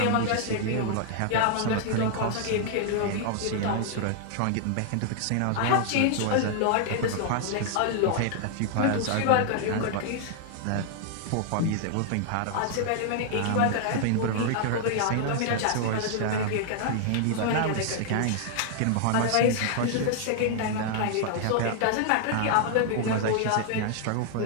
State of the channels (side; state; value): both; different; correlation 0.00